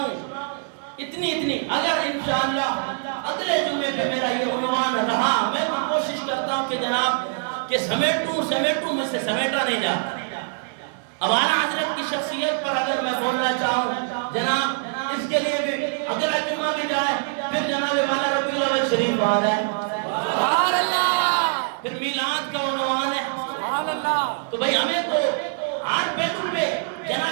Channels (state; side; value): silent; left; 63 dB below the other